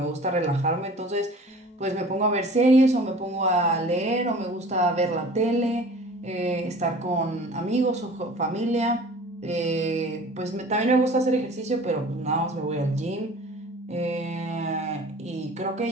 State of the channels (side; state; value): both; normal; correlation 0.45